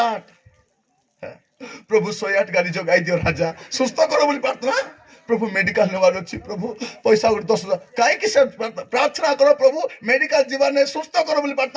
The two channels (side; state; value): both; identical; correlation 1.00